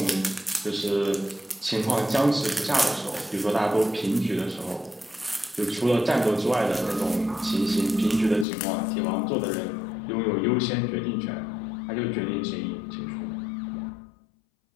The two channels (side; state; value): right; drops out; at 8.5 s